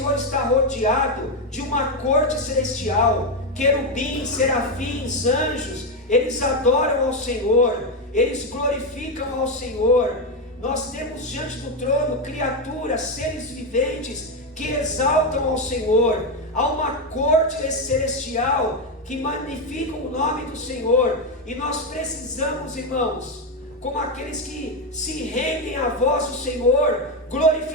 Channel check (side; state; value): both; normal; correlation 0.08